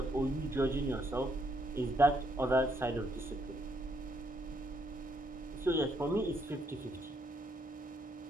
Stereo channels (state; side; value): normal; both; correlation 0.73